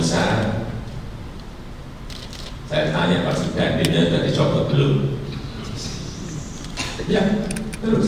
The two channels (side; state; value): both; identical; correlation 1.00